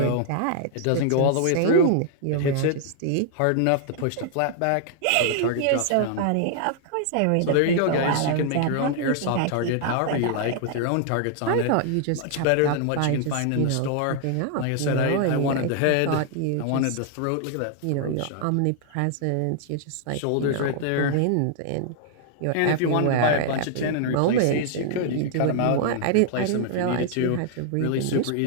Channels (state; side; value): different; both; correlation 0.00